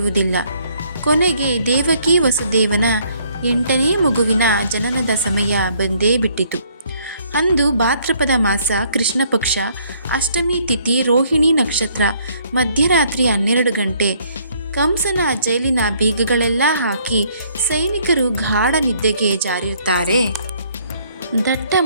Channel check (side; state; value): both; inverted; correlation -0.65